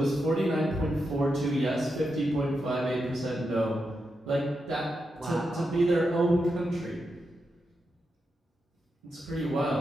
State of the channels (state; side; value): normal; both; correlation 0.86